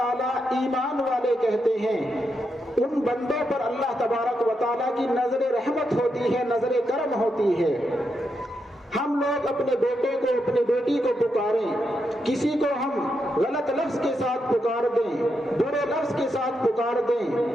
ایمان والے کہتے ہیں، ان بندوں پر اللہ تبارک و تعالیٰ کی نظر رحمت ہوتی ہے، نظر کرم ہوتی ہے۔ ہم لوگ اپنے بیٹے کو، اپنی بیٹی کو پکاریں، کسی کو ہم غلط لفظ کے ساتھ پکار دیں، برے لفظ کے ساتھ پکار دیں،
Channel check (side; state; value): both; normal; correlation 0.83